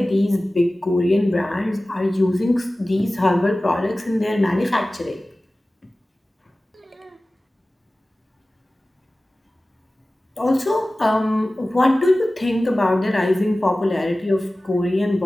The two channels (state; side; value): normal; both; correlation 0.97